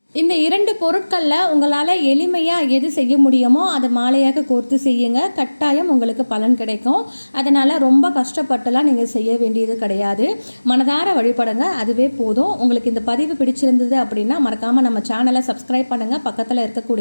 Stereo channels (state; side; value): inverted; both; correlation -1.00